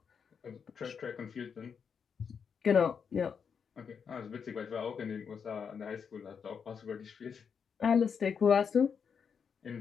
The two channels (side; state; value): right; quieter; 6.6 dB